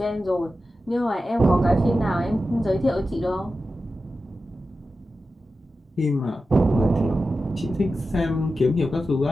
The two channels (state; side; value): normal; both; correlation 0.92